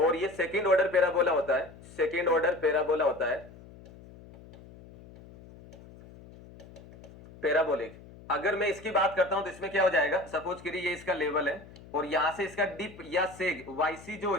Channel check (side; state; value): left; noise; hum, 20 dB below the sound